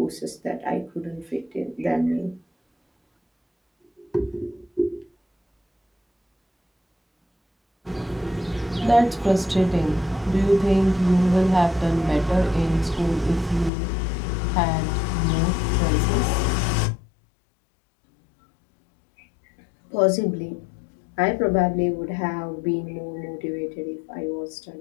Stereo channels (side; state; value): right; drops out; at 13.7 s